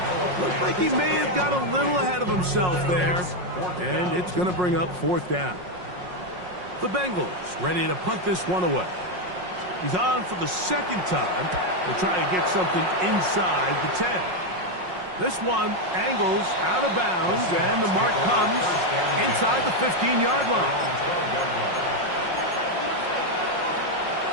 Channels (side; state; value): left; late; 5.5 ms